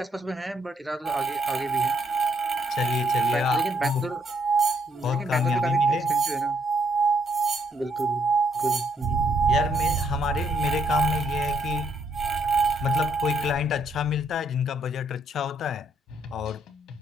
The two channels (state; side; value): normal; both; correlation 0.72